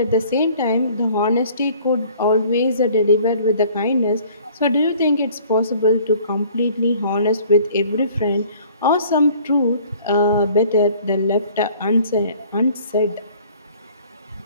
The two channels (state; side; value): inverted; both; correlation -0.54